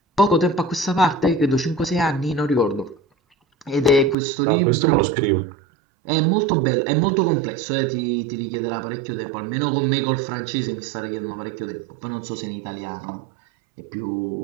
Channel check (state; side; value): drops out; left; at 4.2 s